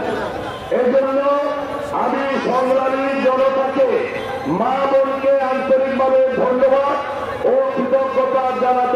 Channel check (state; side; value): identical; both; correlation 1.00